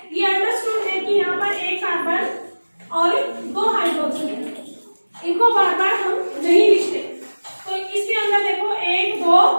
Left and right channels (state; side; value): inverted; both; correlation -1.00